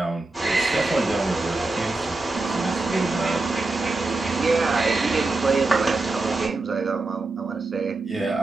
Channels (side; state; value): left; quieter; 3.3 dB